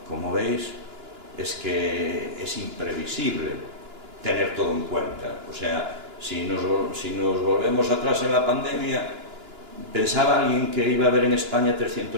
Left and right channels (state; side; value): late; left; 2.9 ms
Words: veis, es que es imprevisible tener todo en cuenta. O sea, si nos volvemos atrás en la pandemia, pensaba alguien que iba a haber en España